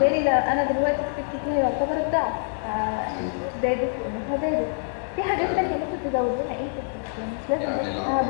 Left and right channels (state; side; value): silent; right; digital silence